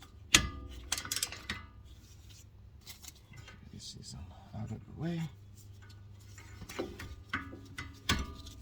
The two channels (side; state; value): both; identical; correlation 1.00